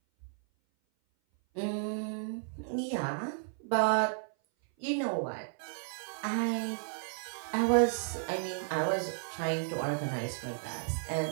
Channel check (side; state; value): left; silent; 55 dB below the other